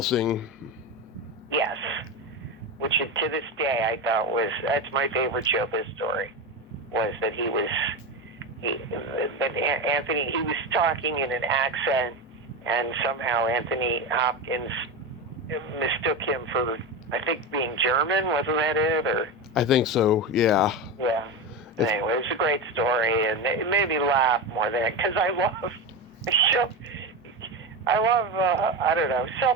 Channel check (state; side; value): normal; both; correlation 0.18